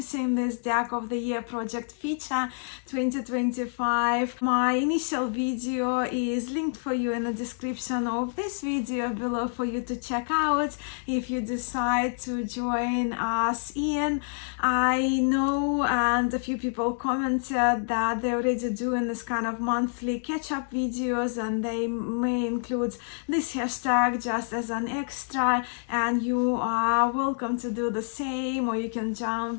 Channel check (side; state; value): right; silent; 60 dB below the other